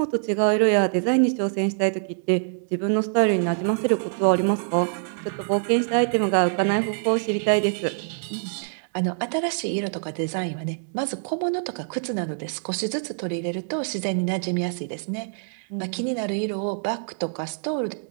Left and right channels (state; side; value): silent; left; digital silence